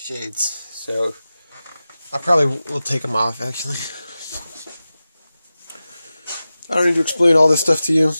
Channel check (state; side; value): inverted; both; correlation -0.94